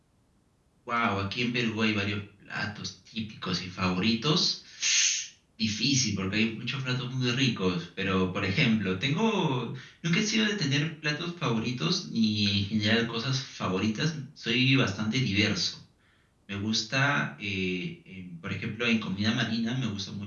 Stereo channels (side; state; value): both; identical; correlation 1.00